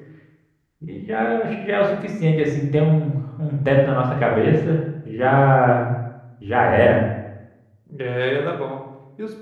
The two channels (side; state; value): both; identical; correlation 1.00